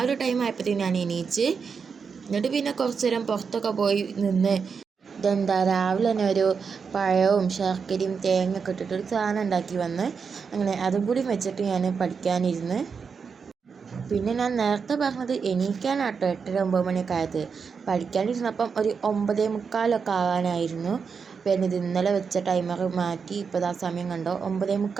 ഒരു ടൈം ആയപ്പോഴത്തേക്കും ഞാൻ എണീച്ച്. എന്നിട്ട് പിന്നെ കുറച്ച് നേരം പുറത്തൊക്കെ പോയി നിന്ന് രാവിലെ തന്നെ ഒരു പഴവും ശർക്കരയും തേങ്ങയൊക്കെ ഇട്ടിട്ടൊരു സാധനം ഉണ്ടാക്കി വന്ന് അങ്ങനെ അതും കൂടി വെച്ചിട്ട് ഞാൻ പഠിക്കാനിരുന്ന്. പിന്നെ ഞാൻ നേരത്തെ പറഞ്ഞത് എണീക്കാനാട്ടോ 8:30 9 മണിയൊക്കെ ആയത്. പഠിക്കാനിരുന്നപ്പം ഒരു 9:45 ആകാനായിരുന്നു. പിന്നെ ഇത് ഇന്നലെ വെച്ച ടൈമർ മാറ്റി ഇപ്പോൾ ആ സമയം കണ്ടോ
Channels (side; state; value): left; quieter; 5.8 dB